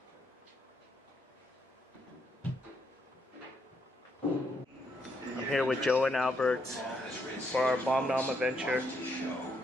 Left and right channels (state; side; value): normal; both; correlation 0.76